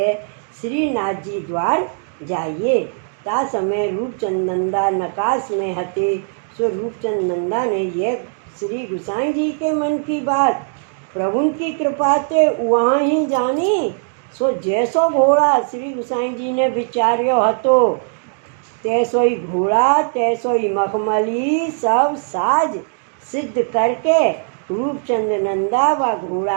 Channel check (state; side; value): silent; left; digital silence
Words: श्रीनाथ जी द्वार जाइए। ता समय रूपचंद नंदा नकाश में हते। सो रूपचंद नंदा ने यह श्री गोसाई जी के मन की बात प्रभु की कृपा से वहाँ ही जानी। सो जैसो घोड़ा श्री गोसाई जी ने विचार्यो हतो, तैसो ही घोड़ा तैसो ही मखमली सब साज सिद्ध करके रूपचंद नंदा व